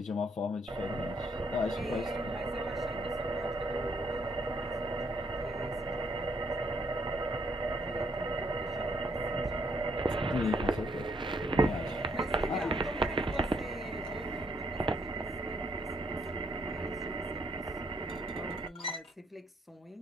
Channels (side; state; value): both; normal; correlation 0.71